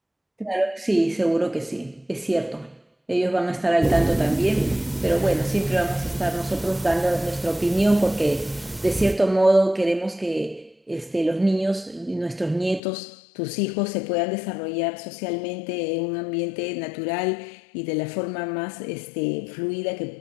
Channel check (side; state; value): right; drops out; at 12.8 s